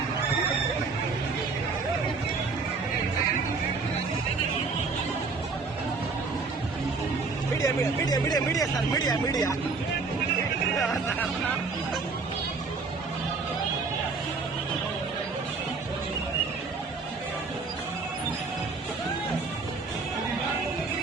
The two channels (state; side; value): quieter; left; 4.3 dB